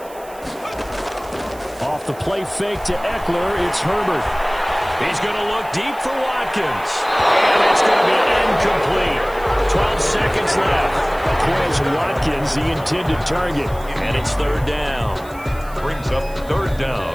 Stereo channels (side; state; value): right; noise; hiss, 22 dB below the sound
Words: Off the play fake to Eckler, it's Herbert. He's going to look deep for Watkins. And it's going to be incomplete. 12 seconds left. Quez Watkins, the intended target. And it's third down. Brings up third